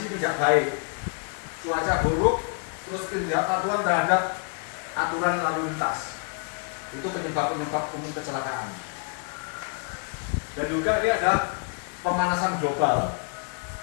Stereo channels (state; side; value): quieter; right; 38.9 dB